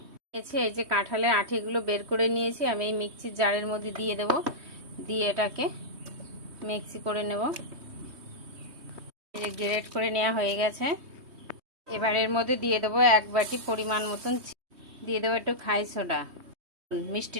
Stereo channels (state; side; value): late; left; 3.2 ms